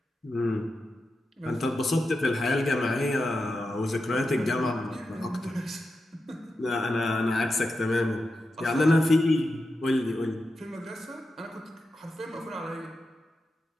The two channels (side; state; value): both; normal; correlation 0.89